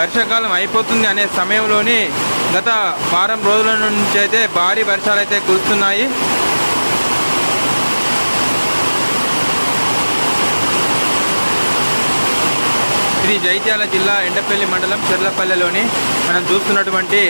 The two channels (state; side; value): inverted; both; correlation -1.00